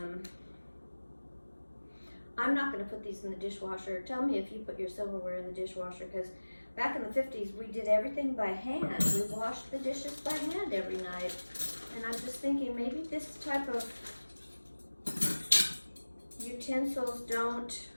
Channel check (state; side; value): inverted; both; correlation -1.00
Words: I'm not going to put these in the dishwasher. Tell me if you put your silverware in the dishwasher, because back in the 50s, we did everything by hand. We washed the dishes by hand every night. And I'm just thinking, maybe this type of utensils don't,